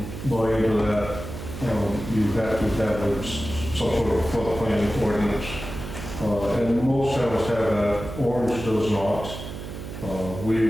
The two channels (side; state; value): right; noise; hum, 9 dB below the sound